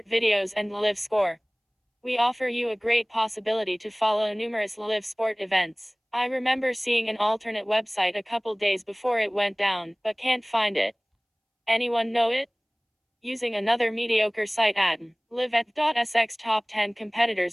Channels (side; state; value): both; identical; correlation 1.00